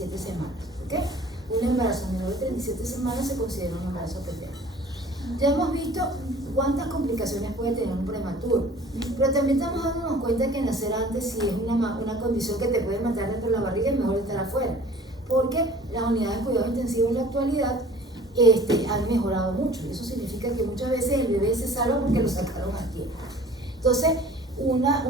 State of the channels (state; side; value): normal; both; correlation 0.48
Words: semanas. ¿Ok? Un embarazo menor de 37 semanas se considera un embarazo pretérmino. Ya hemos visto cuántas complicaciones puede tener un prematuro, pero también estamos dándonos cuenta que nacer antes, si es una condición que te puede matar dentro de la barriga, es mejor estar afuera, porque las unidades de cuidado intensivo en la actualidad han mejorado mucho. Eso significa que muchas veces el bebé se salva porque lo sacaron a tiempo. Entonces, una